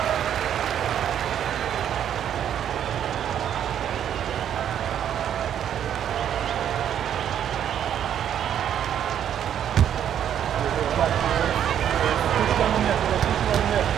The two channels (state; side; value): quieter; left; 9.7 dB